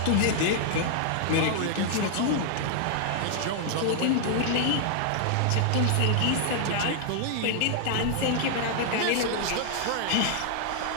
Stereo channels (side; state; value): both; different; correlation -0.01